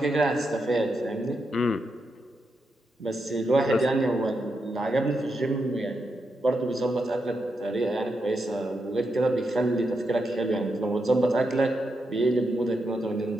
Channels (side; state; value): both; normal; correlation 0.84